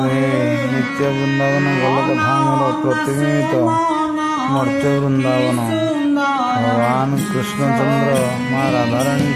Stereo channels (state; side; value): identical; both; correlation 1.00